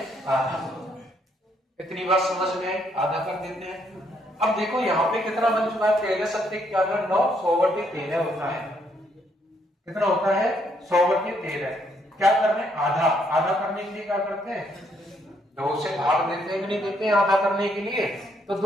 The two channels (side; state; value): both; normal; correlation 0.71